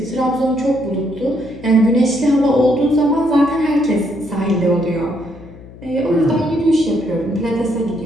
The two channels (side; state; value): left; noise; hum, 19 dB below the sound